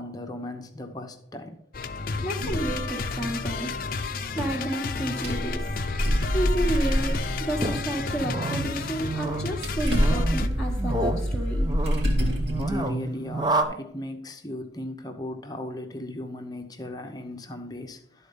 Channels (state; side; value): normal; both; correlation 0.74